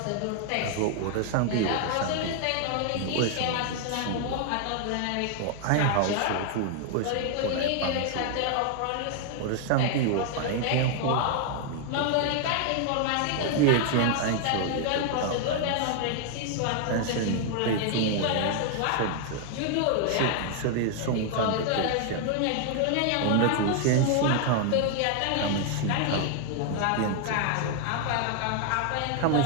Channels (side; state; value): both; different; correlation 0.00